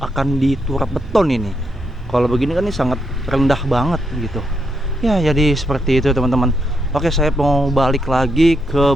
akan diturap beton ini. Kalau begini kan ini sangat rendah banget gitu ya. Jadi seperti itu teman-teman. Oke, saya mau balik lagi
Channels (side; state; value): both; normal; correlation 0.80